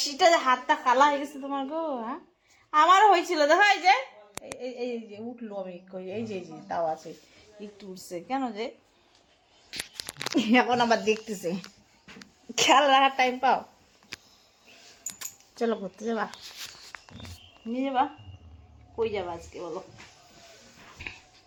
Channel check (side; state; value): both; identical; correlation 1.00